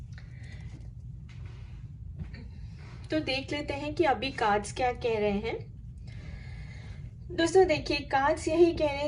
तो देख लेते हैं कि अभी cards क्या कह रहे हैं. दोस्तों देखिए, कार्ड्स यही कह रहे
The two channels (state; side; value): identical; both; correlation 1.00